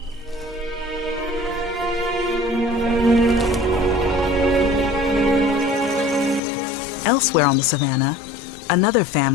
Elsewhere on the savannah, another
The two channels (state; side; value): drops out; right; at 6.4 s